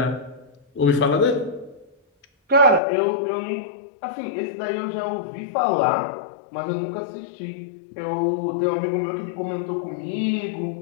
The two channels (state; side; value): drops out; right; at 2.8 s